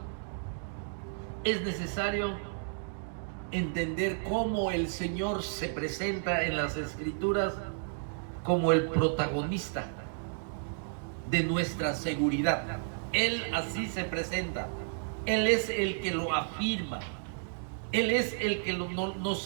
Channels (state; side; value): silent; left; digital silence